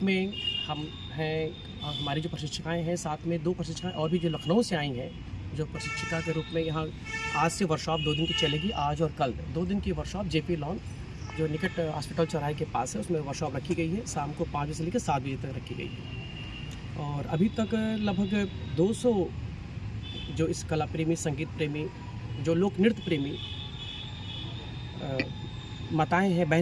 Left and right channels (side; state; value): both; identical; correlation 1.00